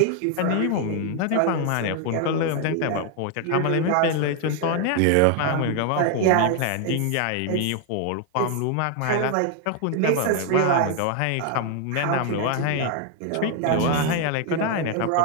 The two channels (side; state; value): both; different; correlation 0.01